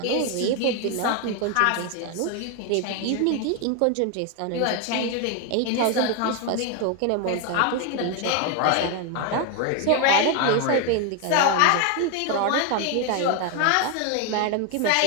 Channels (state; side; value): different; both; correlation 0.01